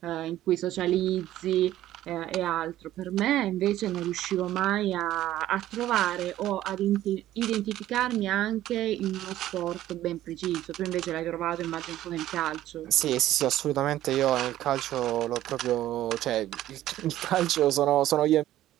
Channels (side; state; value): left; quieter; 13.7 dB